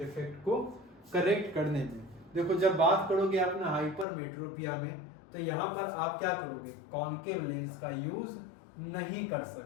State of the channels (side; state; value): right; drops out; at 4.0 s